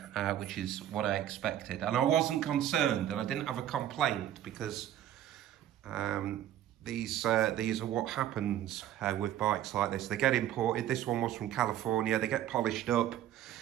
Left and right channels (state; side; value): quieter; left; 11.7 dB